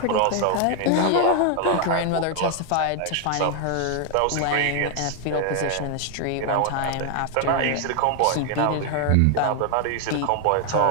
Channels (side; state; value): both; different; correlation 0.00